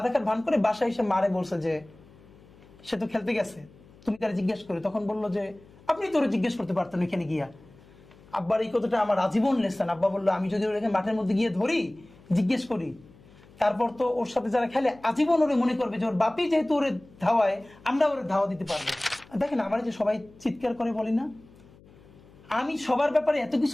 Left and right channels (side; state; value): left; noise; hum, 25 dB below the sound